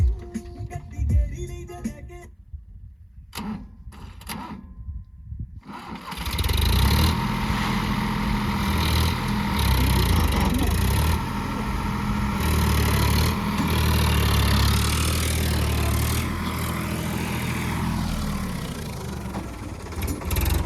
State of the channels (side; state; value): both; identical; correlation 1.00